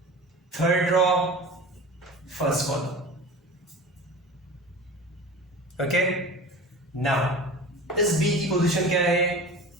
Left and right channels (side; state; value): both; normal; correlation 0.35